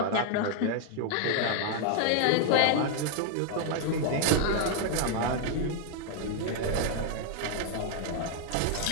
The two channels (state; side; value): different; both; correlation 0.00